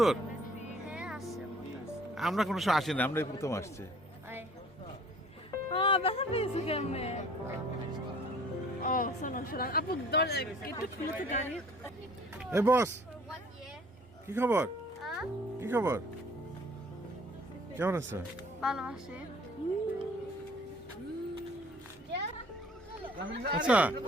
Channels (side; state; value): both; normal; correlation 0.53